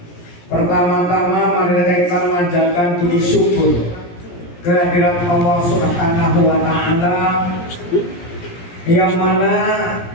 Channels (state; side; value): late; right; 17 ms